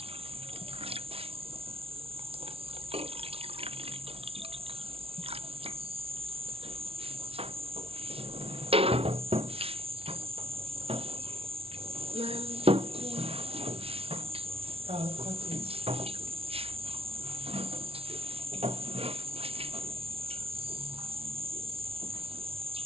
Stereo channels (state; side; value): late; left; 0.28 ms